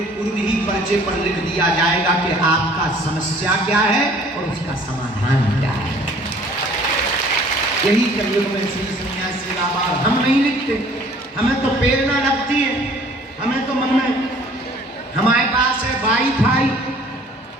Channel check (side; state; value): both; normal; correlation 0.54